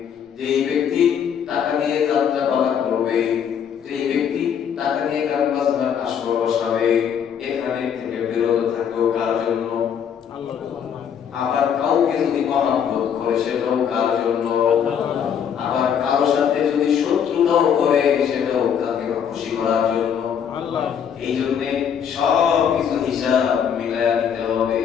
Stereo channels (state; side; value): quieter; right; 8.1 dB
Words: যেই ব্যক্তি টাকা দিয়ে যাত্রা পালা করবে, যেই ব্যক্তি টাকা দিয়ে গান বাজনার আসর বসাবে, এখানে থেকে বিরত থাকো। কার জন্য? আল্লাহর জন্য। আবার কাউকে যদি মহব্বত করে সেটাও কার জন্য? আবার কারোর সাথে যদি শত্রুতাও করে সেটাও তাকে খুশি করার জন্য আল্লাহ। এই জন্য সব কিছু হিসাব মিলায়া নিতে হবে।